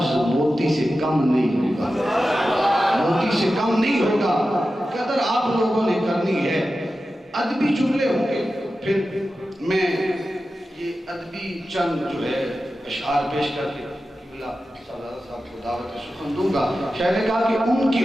موتی سے کم نہیں ہوگا، موتی سے کم نہیں ہوگا۔ قدر آپ لوگوں نے کرنی ہے، ادبی جملے ہوں گے، پھر میں یہ ادبی چند جو ہے اشعار پیش کر کے صاحب کو دعوت سخن دوں گا۔ شاید نے کہا کہ ان کی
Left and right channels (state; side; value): normal; both; correlation 0.93